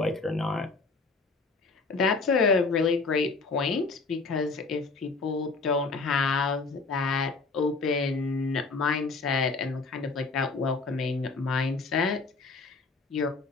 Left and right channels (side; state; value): right; quieter; 4.1 dB